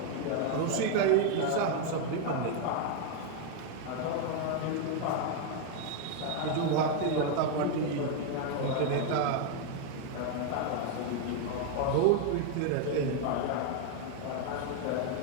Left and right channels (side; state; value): both; different; correlation 0.00